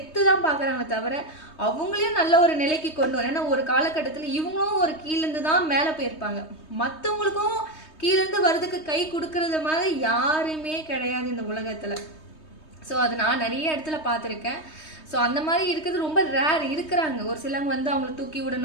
தான் பார்க்குறாங்களே தவிர, அவங்களையும் நல்ல ஒரு நிலைக்கு கொண்டு வரணும். ஏன்னா ஒரு காலகட்டத்தில இவங்களும் ஒரு கீழேருந்து தான் மேல போயிருப்பாங்க. மத்தவங்களுக்கும் கீழேருந்து வரதுக்கு கை குடுக்குறது மாதிரி யாருமே கிடையாது இந்த உலகத்துல. ஸோ அது நான் நிறைய இடத்துல பார்த்துருக்கேன். ஸோ அந்த மாதிரி இருக்கிறது ரொம்ப ரேர் இருக்கிறாங்க. ஒரு சிலவங்க வந்து அவங்கள தூக்கி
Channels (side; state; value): right; late; 3.2 ms